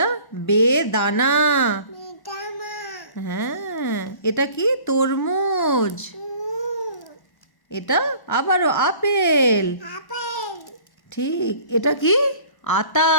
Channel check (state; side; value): late; right; 1.1 ms